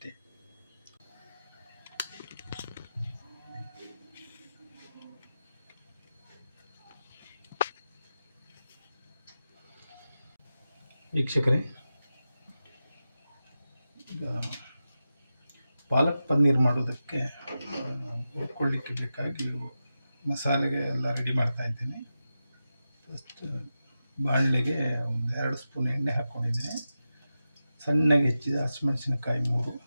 ವೀಕ್ಷಕರೇ, ಈಗ ಪಾಲಕ್ ಪನ್ನೀರ್ ಮಾಡೋದಕ್ಕೆ ಹುರ್ಕೊಳ್ಳಿಕ್ಕೆ ಬೇಕಾಗಿ ಮಸಾಲೆಗೆ ಎಲ್ಲ ರೆಡಿ ಮಾಡ್ತಾ ಇದ್ದೀನಿ. ಫಸ್ಟ್ ಬಾಣಲೆಗೆ ಒಂದು 2 ಸ್ಪೂನ್ ಎಣ್ಣೆ ಹಾಕ್ಕೊಂಡಿದ್ದೀನಿ. ಸಣ್ಣಗೆ ಹೆಚ್ಚಿದ ಹಸಿಮೆಣಸಿನಕಾಯಿ 3,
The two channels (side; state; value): both; inverted; correlation -0.91